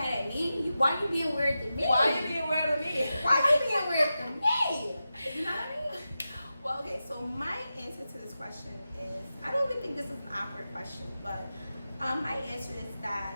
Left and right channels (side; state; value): both; inverted; correlation -0.92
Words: at me? Why you being weird to me? Why are you being weird to me? Why you being weird to me? You know what I mean? Well, okay, so my answer to this question is, I don't even think this is an awkward question, but my answer is that